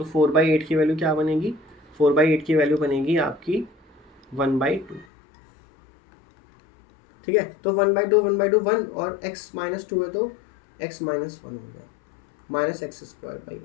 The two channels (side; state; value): right; drops out; at 5.1 s